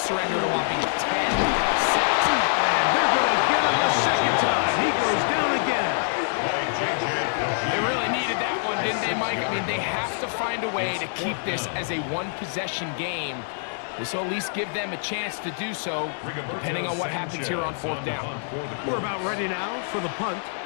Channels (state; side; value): silent; right; digital silence